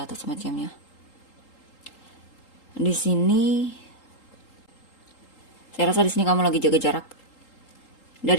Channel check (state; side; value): late; right; 3.8 ms